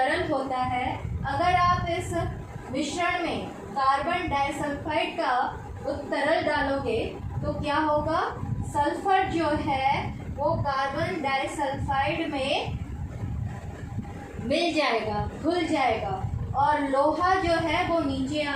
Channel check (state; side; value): identical; both; correlation 1.00